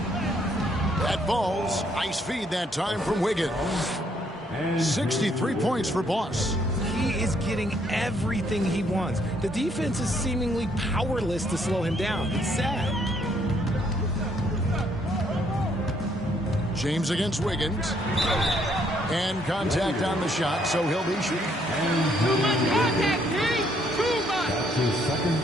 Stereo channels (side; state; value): both; normal; correlation 0.69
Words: That falls. Nice feed that time from Wiggins. 63 points for Boss. He is getting everything he wants. The defense is seemingly powerless to slow him down. It's sad. James against Wiggins. And contact on the shot, so he'll be shooting. Too much contact, Pete! Too much! That's his second